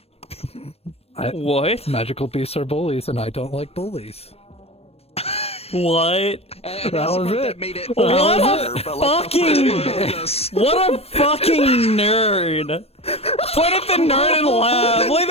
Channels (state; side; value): late; right; 0.29 ms